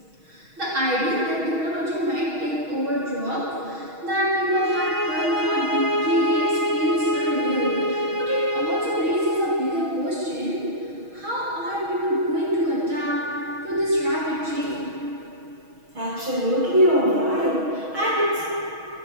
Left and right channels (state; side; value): late; left; 6.3 ms